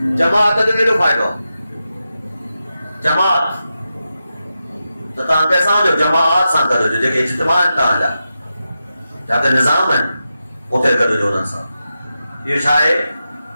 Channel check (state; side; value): inverted; both; correlation -0.90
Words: جماعت کے نہیں فائدہ جماعت تو تاں کیسا ہو جو جماعت سان کرو جو کہ اجتماع تاں جا جاتے نظام ہے اتھے کرو جو انسا یہ